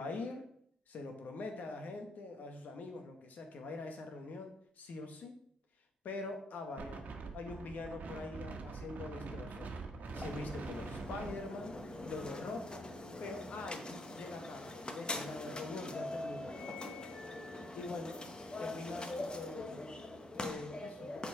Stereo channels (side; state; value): both; normal; correlation 0.72